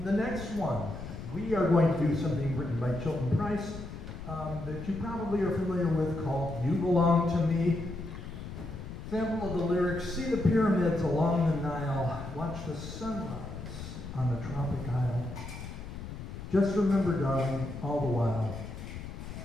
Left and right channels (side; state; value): left; noise; rumble, 10 dB below the sound